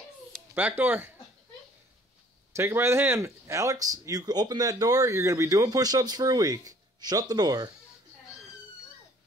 Back door. Take her by the hand. Alex, you open that door, you're going to be doing push-ups for a week. Shut the door.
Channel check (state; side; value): normal; both; correlation 0.57